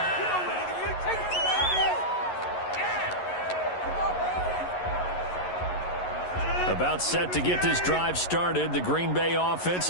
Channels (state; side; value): late; right; 11 ms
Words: About set to get this drive started, the Green Bay offense